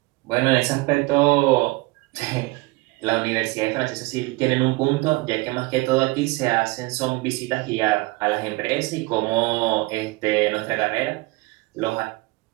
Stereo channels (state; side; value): quieter; left; 22.8 dB